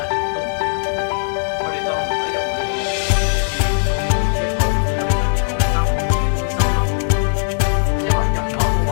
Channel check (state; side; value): silent; right; digital silence